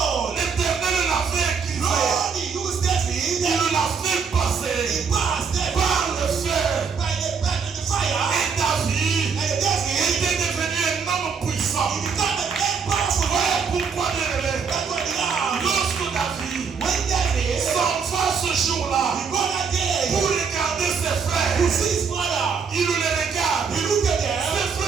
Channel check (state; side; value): quieter; left; 5.8 dB